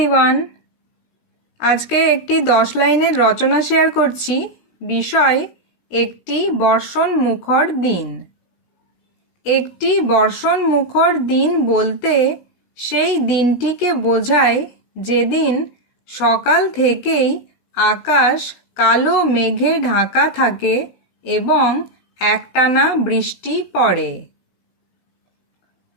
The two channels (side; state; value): right; late; 16 ms